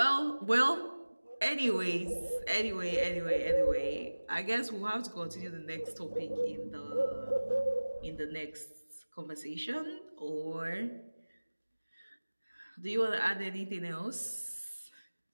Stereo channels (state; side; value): inverted; both; correlation -1.00